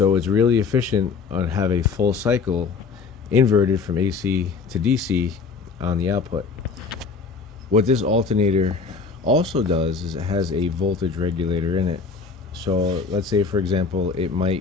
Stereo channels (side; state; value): right; quieter; 4.9 dB